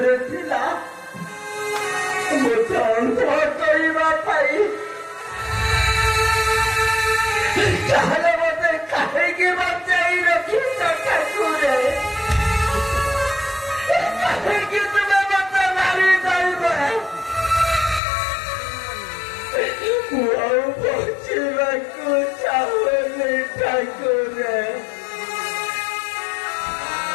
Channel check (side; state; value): right; drops out; at 18.0 s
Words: মতো অন্ধ করিবা পাই তাহলে মতে কাহিকে বাঁচাই রখিস ঠাকুরে, কাহিকে তুমি মতে মারি যাইবে পৌঁছিବାକୁ ଚାହୁଁନି ଠାକୁରେ।